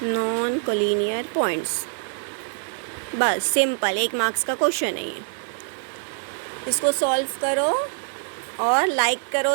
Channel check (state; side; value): silent; left; 60 dB below the other